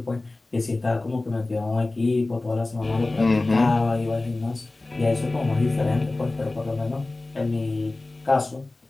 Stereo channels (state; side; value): quieter; right; 3.0 dB